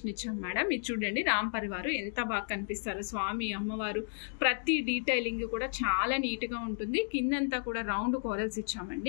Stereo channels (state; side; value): silent; right; digital silence